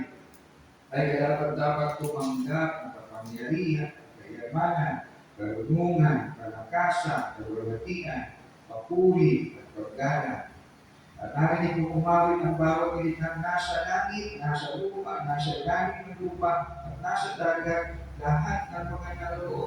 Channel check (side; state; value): both; identical; correlation 1.00